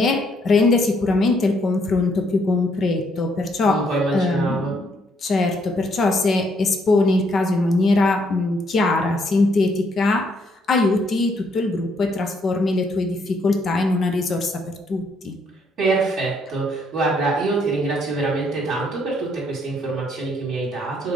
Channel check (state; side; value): normal; both; correlation 0.71